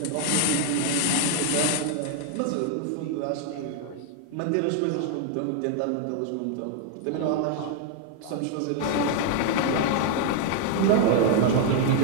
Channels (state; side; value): different; both; correlation 0.00